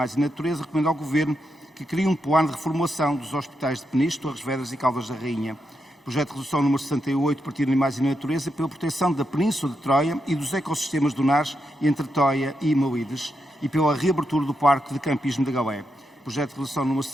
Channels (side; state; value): both; normal; correlation 0.84